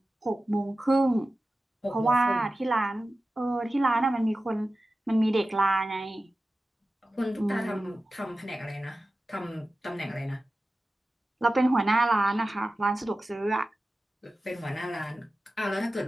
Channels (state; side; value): normal; both; correlation 0.94